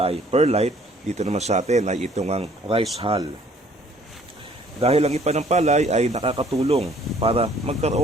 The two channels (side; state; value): both; normal; correlation 0.58